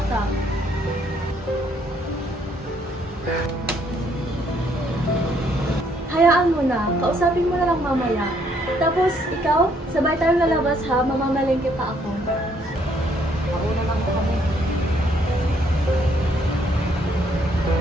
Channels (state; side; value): normal; both; correlation 0.68